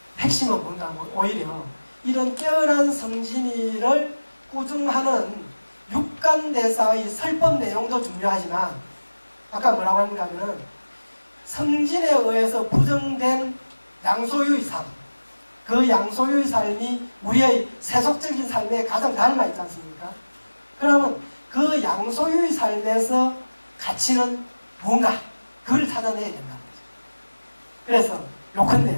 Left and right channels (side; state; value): both; inverted; correlation -1.00